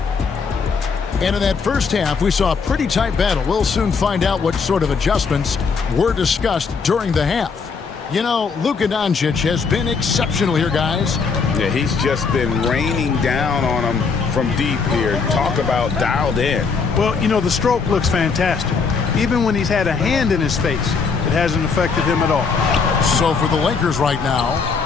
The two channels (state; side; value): quieter; right; 5.2 dB